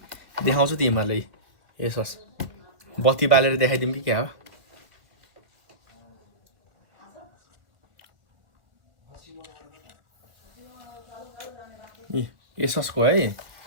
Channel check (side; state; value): left; late; 2.3 ms